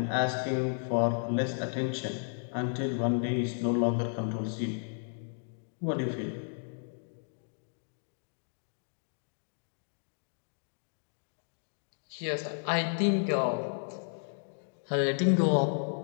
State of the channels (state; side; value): silent; right; digital silence